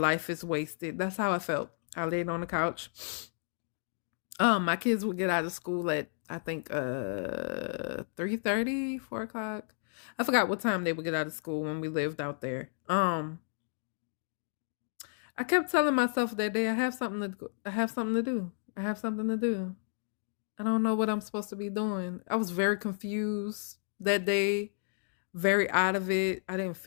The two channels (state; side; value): silent; right; digital silence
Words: is wasted. That's how I felt. I laid on the couch. My kids would get out of school at I think 3:30, 4 o'clock. I forgot what time they would get out of school when we lived out there. I kept telling myself that day, I have something to do. I have something to do. I don't know what I'm supposed to be doing. I was very confused that day, very out of it. I didn't